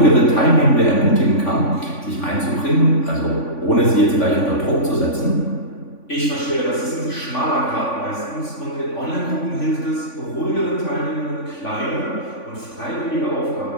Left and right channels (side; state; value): right; late; 3.5 ms